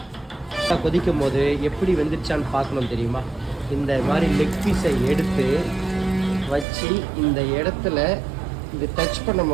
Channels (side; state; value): left; drops out; at 6.7 s